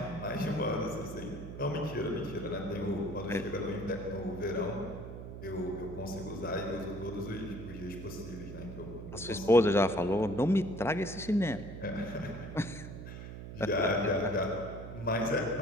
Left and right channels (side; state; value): right; noise; hum, 10 dB below the sound